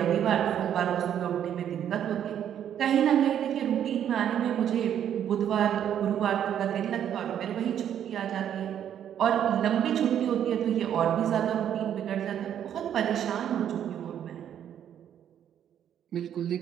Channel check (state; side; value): quieter; left; 9.7 dB